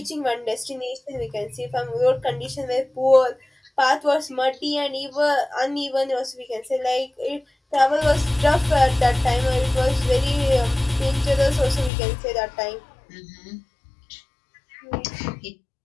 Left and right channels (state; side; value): drops out; right; at 11.9 s